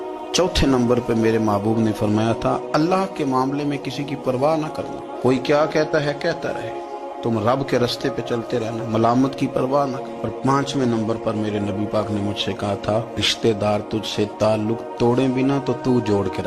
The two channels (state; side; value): identical; both; correlation 1.00